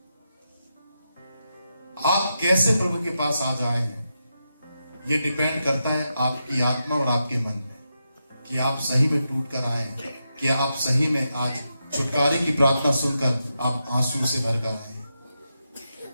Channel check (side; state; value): both; inverted; correlation -0.86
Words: आप कैसे प्रभु के पास आ जाए हैं, ये डिपेंड करता है आपकी आत्मा और आपके मन में, कि आप सही में टूट कर आए, कि आप सही में आज छुटकारे की प्रार्थना सुनकर आप आंसू से भर कर आए,